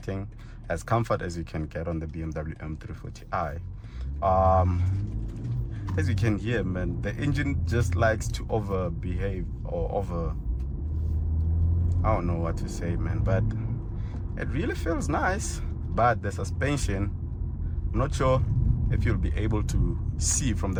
as comfort as you can get on the BMW M340i. As you can hear, man, the engine just likes to overbehave or I don't know what to say, man, but it really feels nice. But the suspension, I'm not sure if you'll be able to see from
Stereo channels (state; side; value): identical; both; correlation 1.00